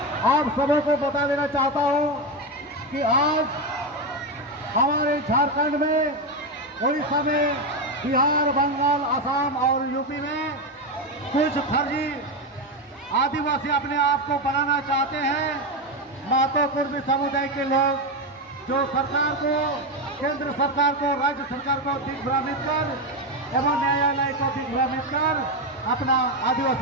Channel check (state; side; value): normal; both; correlation 0.11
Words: आप सबों को बता देना चाहता हूं कि आज हमारे झारखंड में, उड़ीसा में, बिहार, बंगाल, असम और यूपी में कुछ फर्जी आदिवासी अपने आप को बनाना चाहते हैं। महतो कुर्मी समुदाय के लोग जो सरकार को, केंद्र सरकार को, राज्य सरकार को दिग्भ्रमित कर एवं न्यायालय को दिग्भ्रमित कर अपना